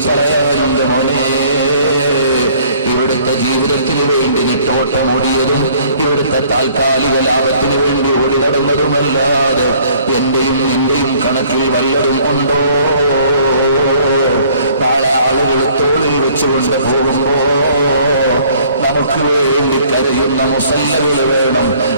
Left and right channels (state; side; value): inverted; both; correlation -0.57